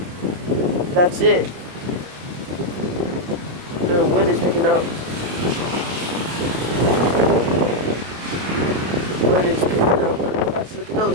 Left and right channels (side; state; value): left; late; 28 ms